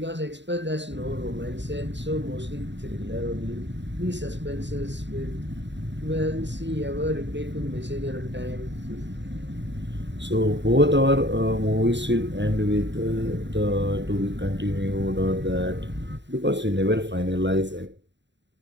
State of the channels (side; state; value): left; late; 0.52 ms